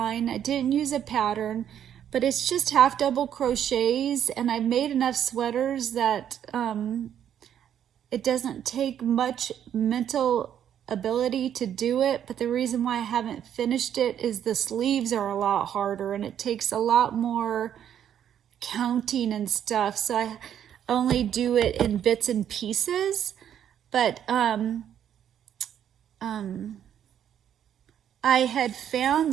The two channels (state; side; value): quieter; left; 9.7 dB